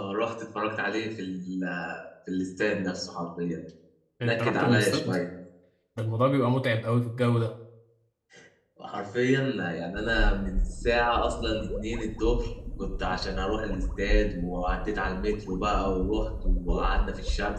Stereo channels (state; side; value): identical; both; correlation 1.00